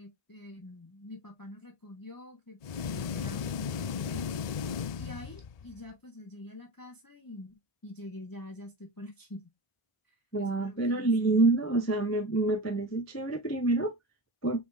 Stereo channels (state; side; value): late; right; 1.7 ms